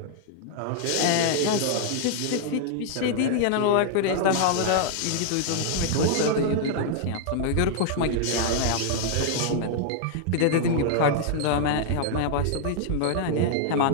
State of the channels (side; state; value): both; different; correlation -0.01